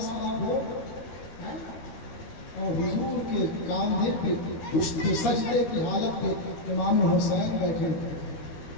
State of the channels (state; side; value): late; right; 13 ms